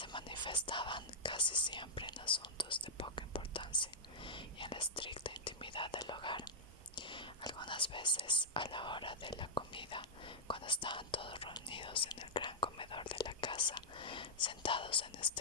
manifestaban casi siempre en asuntos de poca importancia y en la estricta intimidad del hogar. Algunas veces, a la hora de la comida, cuando estaban todos reunidos en el gran comedor de la casa, sentados en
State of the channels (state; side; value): normal; both; correlation -0.06